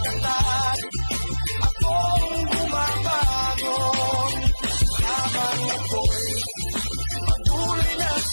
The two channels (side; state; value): both; inverted; correlation -1.00